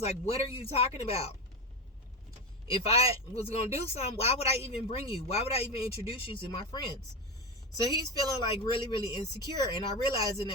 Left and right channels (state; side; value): normal; both; correlation 0.18